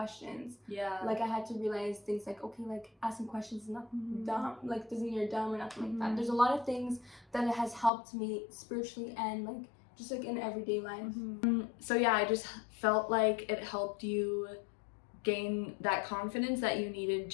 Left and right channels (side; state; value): right; drops out; at 7.9 s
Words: Like I had to realize things like, okay, like asking questions is not dumb, like doesn't mean you're dumb or nothing like that. There's a lot of things that it has helped me spiritually and like just like in everyday life. So yeah, I just felt like it helped you gain that confidence that you needed